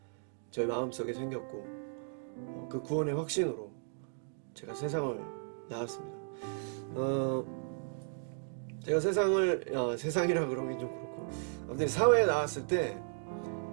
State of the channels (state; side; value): silent; left; digital silence